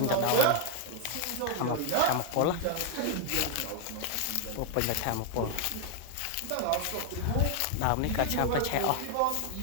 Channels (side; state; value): both; different; correlation -0.01